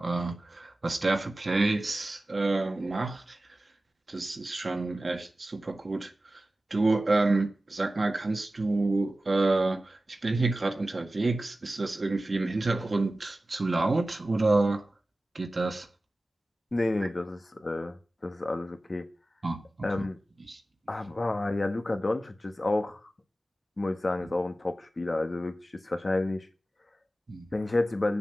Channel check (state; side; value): normal; both; correlation 0.95